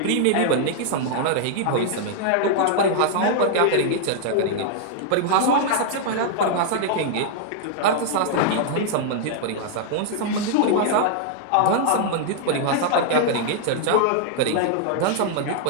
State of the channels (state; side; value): different; both; correlation -0.01